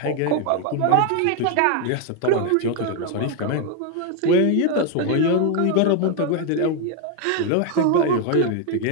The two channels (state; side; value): different; both; correlation 0.01